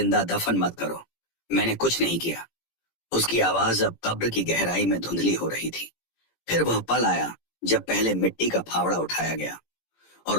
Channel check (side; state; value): right; late; 17 ms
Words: दफन मत करो, मैंने कुछ नहीं किया। उसकी आवाज अब कब्र की गहराई में धुंधली हो रही थी। फिर वह पल आया जब पहले मिट्टी का फावड़ा उठाया गया